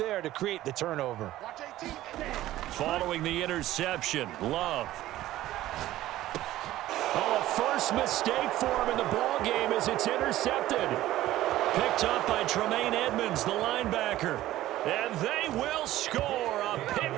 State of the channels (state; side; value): quieter; left; 14.9 dB